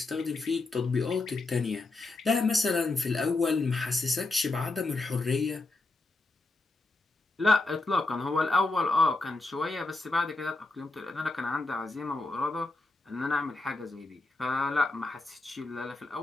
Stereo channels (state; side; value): quieter; right; 3.2 dB